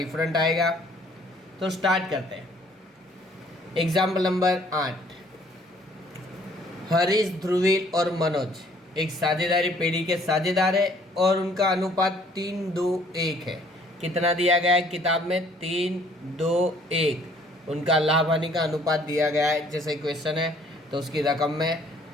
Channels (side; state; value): both; normal; correlation 0.60